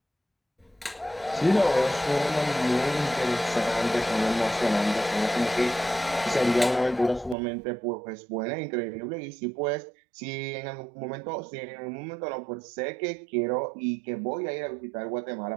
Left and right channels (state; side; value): drops out; left; at 7.4 s